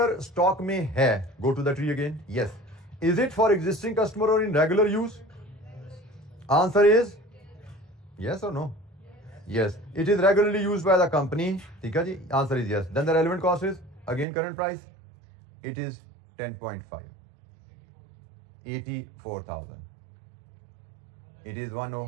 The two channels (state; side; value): drops out; left; at 14.2 s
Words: स्टॉक में है, go to the tree again, yes. Is it for existing customer or in regular use? Answer is yes or no? Yes, it is regularly used by the company. ठीक है जी, answer is yes. Then the relevant cost is again current price. It is 10.5. 84,000. It is